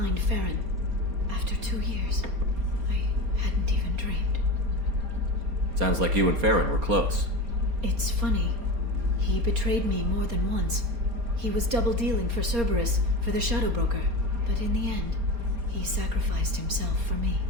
Farron. After 2 years, I hadn't even dreamed. Sounds like you and Farron were close. It's funny. He betrayed me more than once. He was double-dealing for Cerberus, for the Shadow Broker. But in the end, he sacrificed himself for me.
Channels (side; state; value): left; late; 4.3 ms